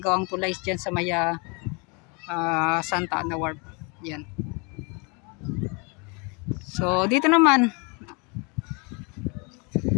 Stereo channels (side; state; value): right; quieter; 31.6 dB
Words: tulay dyan sa maya Santa Ana Wharf. Yan. So dito naman